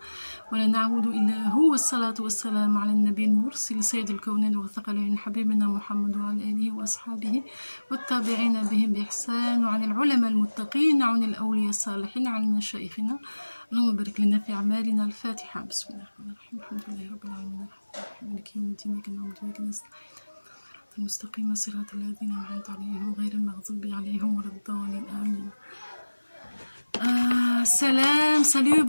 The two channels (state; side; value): inverted; both; correlation -1.00